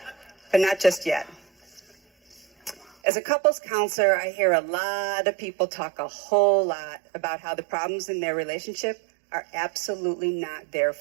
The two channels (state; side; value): drops out; left; at 2.9 s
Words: But not just yet. As a couples counselor, I hear a lot of people talk a whole lot about how the problems in their relationship are absolutely not their